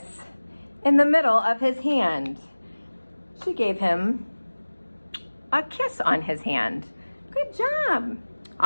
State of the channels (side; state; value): both; inverted; correlation -1.00